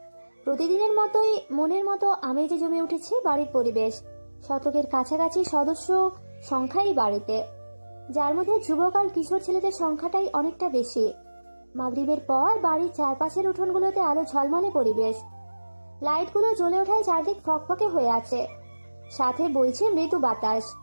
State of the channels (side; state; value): both; inverted; correlation -1.00